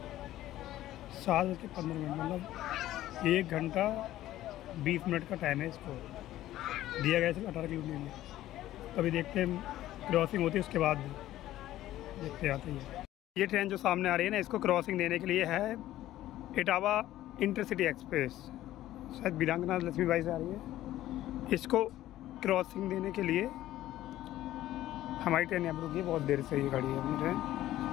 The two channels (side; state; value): right; quieter; 14.2 dB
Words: 7:15, मतलब 1 घंटा 20 मिनट का टाइम है इसको दिया गया है 18 किलोमीटर में। अभी देखते हैं क्रॉसिंग होती है, उसके बाद देखते आते हैं। ये ट्रेन जो सामने आ रही है ना, इसको क्रॉसिंग देने के लिए है इटावा इंटरसिटी एक्सप्रेस, शायद वीरांगना लक्ष्मीबाई से आ रही है। इसको क्रॉसिंग देने के लिए हमारी ट्रेन यहाँ पर रुकी है, बहुत देर से ये गाड़ी है अपनी ट्रेन।